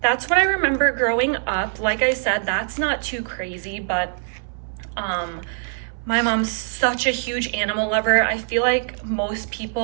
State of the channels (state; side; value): silent; left; 62 dB below the other